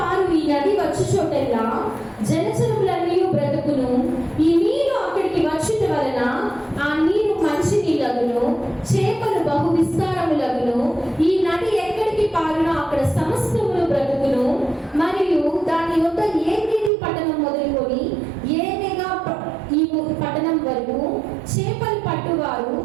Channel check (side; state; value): left; drops out; at 16.9 s